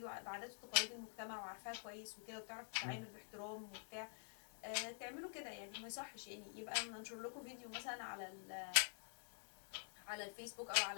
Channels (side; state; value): right; silent; digital silence